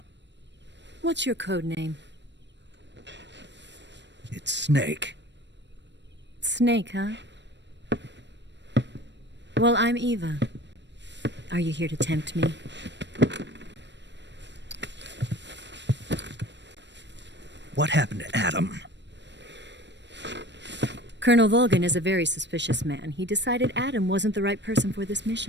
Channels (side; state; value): left; late; 0.52 ms